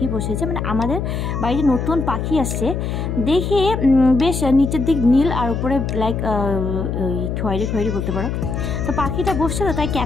বসেছে, মানে আমাদের বাড়িতে নতুন পাখি আসছে। দেখে বেশ নিচের দিক নীল আর উপরে লাইক খয়েরি খয়েরি বলতে পারো। তো পাখিটা বসছে, তো তাই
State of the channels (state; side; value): noise; left; hum, 2 dB below the sound